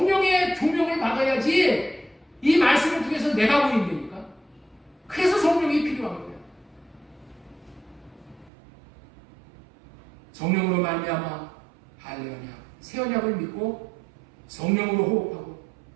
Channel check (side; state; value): left; drops out; at 8.5 s